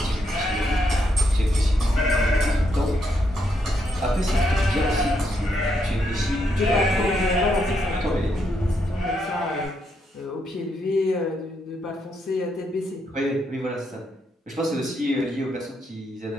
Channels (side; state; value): both; normal; correlation 0.78